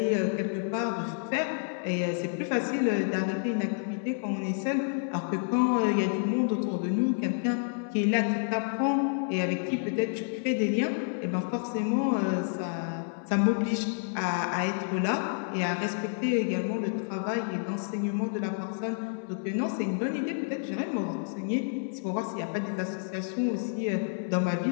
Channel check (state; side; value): silent; right; digital silence